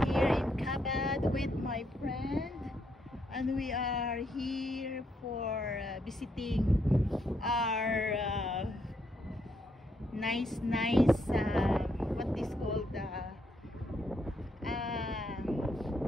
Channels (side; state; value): both; normal; correlation 0.76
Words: here in Cabad with my friend, and we are here for visiting our nice what is called